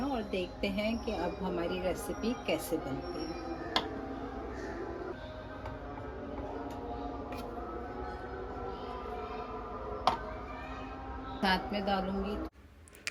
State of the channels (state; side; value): identical; both; correlation 1.00